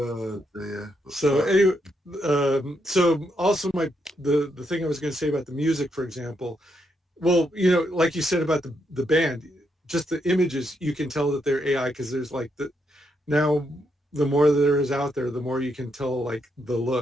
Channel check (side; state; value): both; normal; correlation 0.79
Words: dear. So anyway, so also the thing I was going to say about the music, for example, well, like you said about the band, just the images, you can tell that they're AI because there's like now the more there is out there, the more you can tell like the